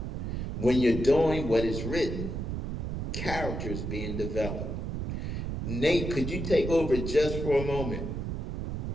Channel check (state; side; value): noise; right; rumble, 3 dB below the sound